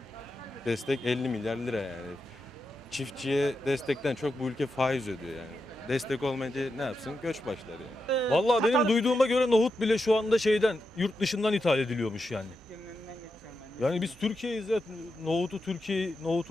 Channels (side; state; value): both; normal; correlation 0.87